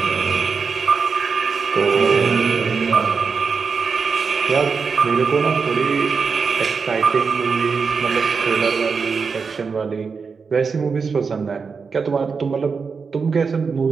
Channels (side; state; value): left; quieter; 5.3 dB